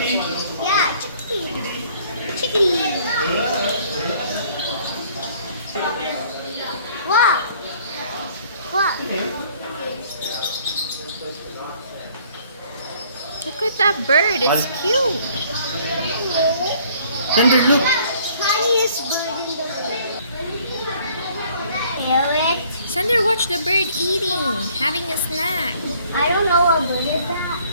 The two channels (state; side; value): inverted; both; correlation -0.59